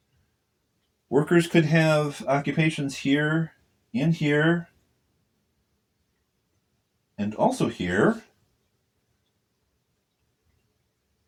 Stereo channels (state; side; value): identical; both; correlation 1.00